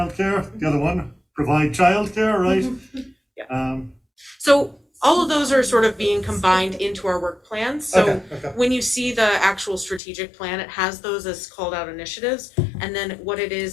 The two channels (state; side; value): drops out; right; at 10.0 s